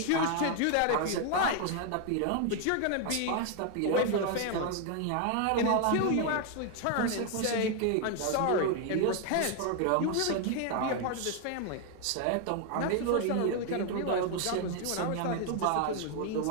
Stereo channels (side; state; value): both; different; correlation 0.01